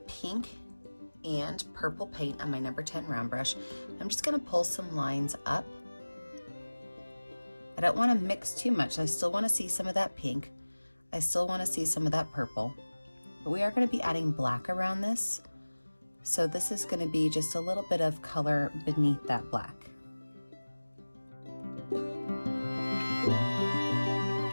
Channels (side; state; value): both; inverted; correlation -1.00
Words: pink and purple paint on my number 10 round brush. I'm just gonna pull some lines up. I don't wanna mix too much. I still wanna see some of that pink. I still wanna see some of that purple. But we are going to be adding black around this. So this is going to be just a little bit of color beneath that black.